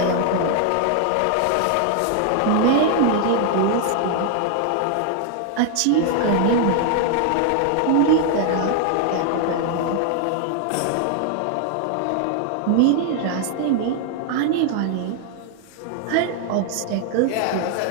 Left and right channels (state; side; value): different; both; correlation 0.00